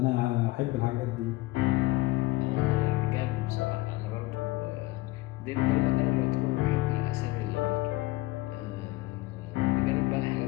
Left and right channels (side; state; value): right; quieter; 19.9 dB